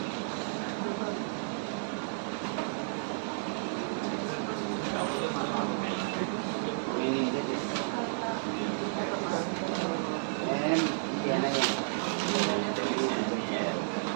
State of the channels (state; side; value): silent; left; digital silence